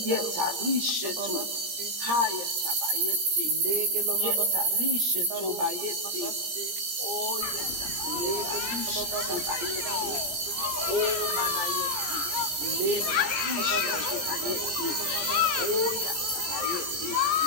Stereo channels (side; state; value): left; late; 17 ms